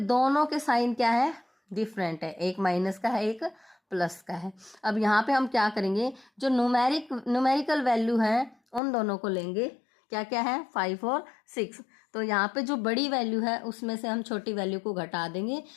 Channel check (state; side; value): drops out; right; at 8.8 s